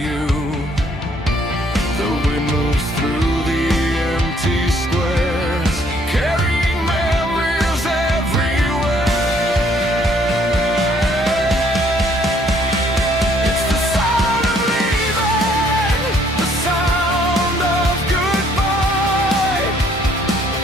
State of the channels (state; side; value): normal; both; correlation 0.64